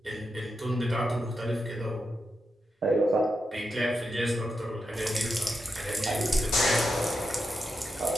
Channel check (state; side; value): normal; both; correlation 0.87